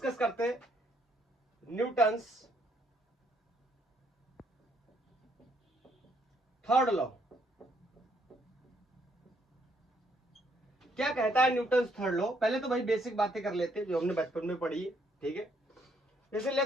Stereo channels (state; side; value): normal; both; correlation 0.70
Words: करते हैं न्यूटन्स थर्ड लॉ। क्या कहता है न्यूटन्स थर्ड लॉ? पहले तो भाई बेसिक बातें कर लेते हैं जो हमने बचपन में पढ़ी है। ठीक है, जैसे